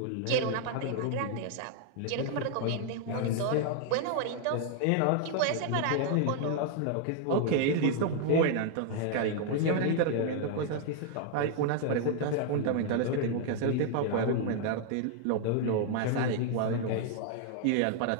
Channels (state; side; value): different; both; correlation 0.00